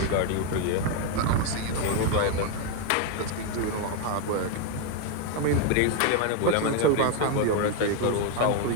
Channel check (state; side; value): different; both; correlation 0.01